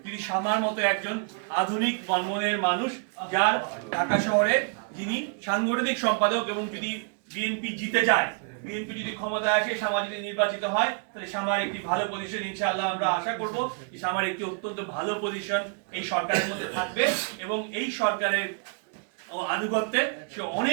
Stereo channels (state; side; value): quieter; left; 39.4 dB